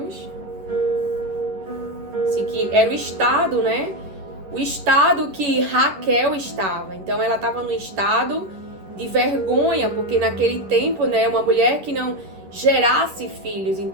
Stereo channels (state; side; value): late; left; 11 ms